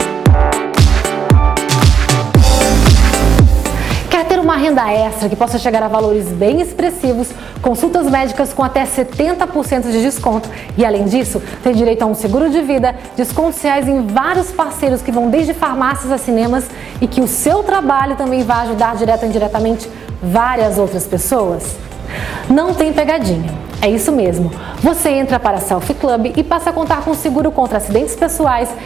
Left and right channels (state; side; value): quieter; left; 6.9 dB